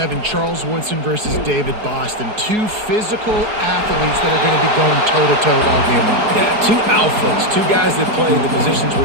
Charles Woodson versus David Boston. Two physical athletes that are going to be going toe-to-toe all game long. Yeah, two alphas, two guys that play the positions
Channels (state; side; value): late; left; 4.7 ms